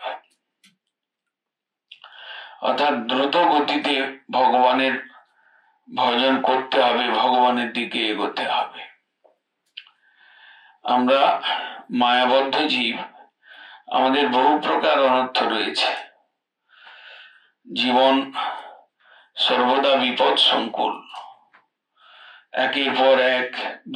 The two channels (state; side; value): identical; both; correlation 1.00